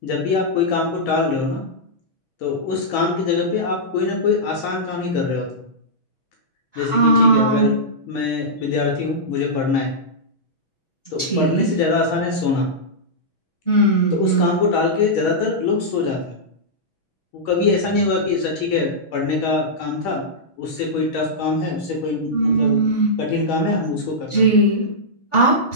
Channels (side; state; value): right; late; 6.2 ms